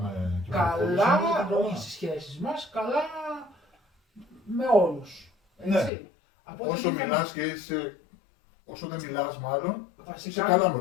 Καλά, όχι στις σχέσεις μας, καλά με όλους. Έτσι. Όσο μιλάς και είσαι. Όσο δεν μιλάς, μάλλον. Βασικά, είσαι καλά με.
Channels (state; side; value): drops out; right; at 5.9 s